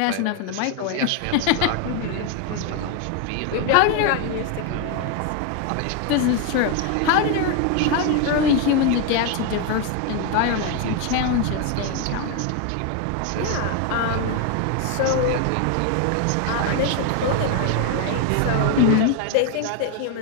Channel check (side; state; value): both; different; correlation 0.01